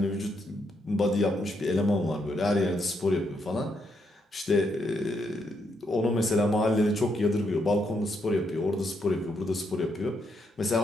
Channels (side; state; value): both; normal; correlation 0.78